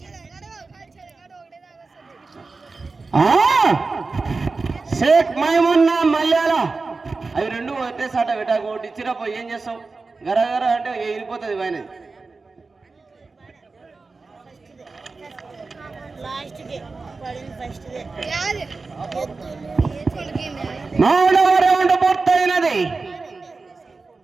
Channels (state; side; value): quieter; left; 4.0 dB